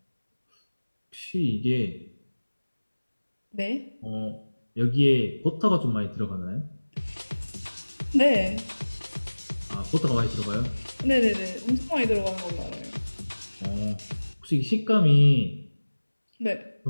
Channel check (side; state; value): both; inverted; correlation -1.00